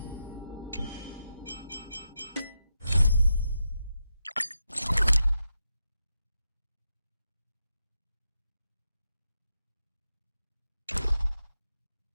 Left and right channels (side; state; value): both; inverted; correlation -0.86